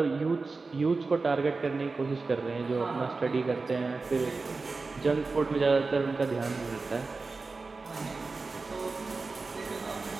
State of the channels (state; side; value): quieter; left; 4.0 dB